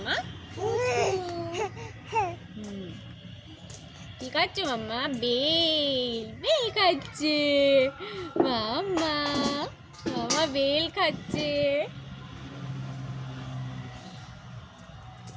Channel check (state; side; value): identical; both; correlation 1.00